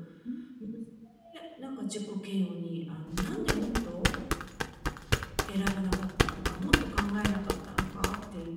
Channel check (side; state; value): both; identical; correlation 1.00